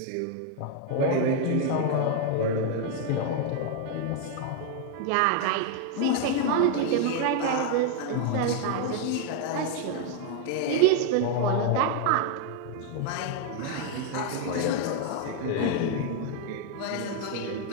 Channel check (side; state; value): both; different; correlation 0.00